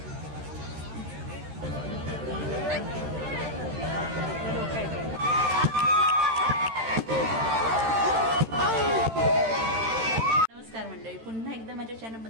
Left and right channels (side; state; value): left; late; 13 ms